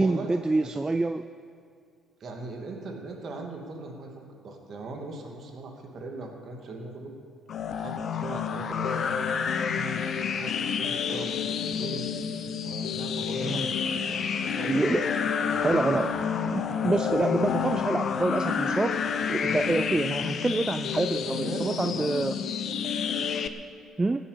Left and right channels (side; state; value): both; normal; correlation 0.76